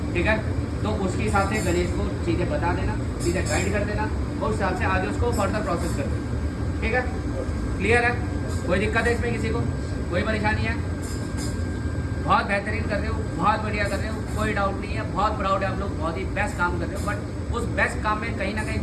ठीक है, तो उसके हिसाब से गणेश को चीज़ें बता देना, चीज़ें गाइड कर देना और उस हिसाब से आगे उसको फर्दर प्रोसेस कर देना। ठीक है, क्लियर है? कोई दिक्कत है इसमें किसी को? कोई परेशानी है? बहुत बेहतरीन कर रहे हो, बहुत बढ़िया कर रहे हो, कोई डाउट नहीं है, बहुत प्राउड है आप लोग, बहुत ही बेस्ट काम कर रहे हो। बट उस बेस्ट काम में कहीं ना कहीं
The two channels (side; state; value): both; identical; correlation 1.00